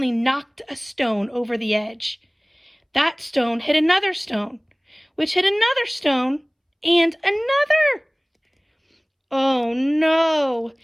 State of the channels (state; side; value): identical; both; correlation 1.00